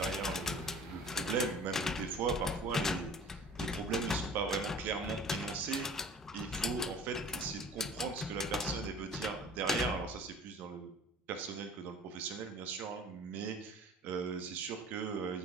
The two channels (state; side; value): normal; both; correlation 0.45